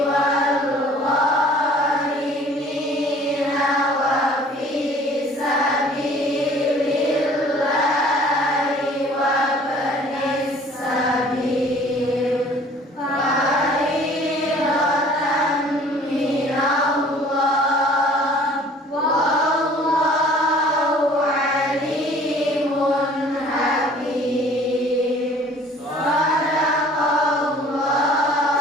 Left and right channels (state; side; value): normal; both; correlation 0.52